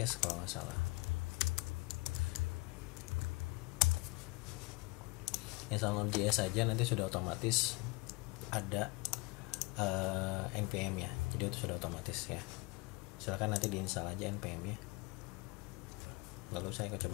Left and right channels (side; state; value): right; quieter; 25.6 dB